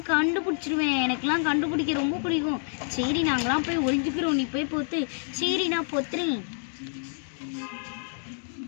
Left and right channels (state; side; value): silent; right; 60 dB below the other